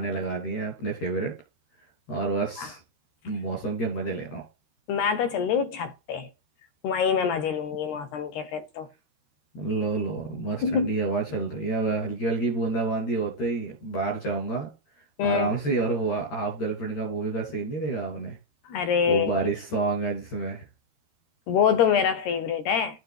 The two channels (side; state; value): right; late; 13 ms